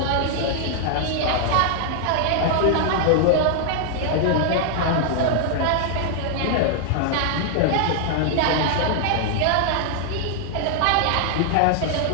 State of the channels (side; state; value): both; different; correlation 0.00